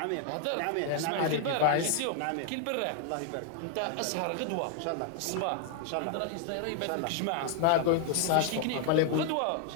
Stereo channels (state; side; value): different; both; correlation 0.00